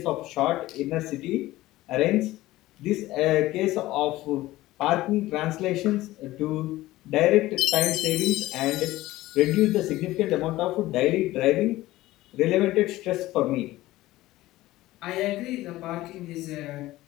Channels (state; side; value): quieter; right; 17.0 dB